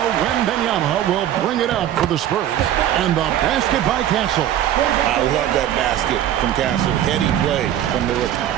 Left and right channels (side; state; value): left; quieter; 11.5 dB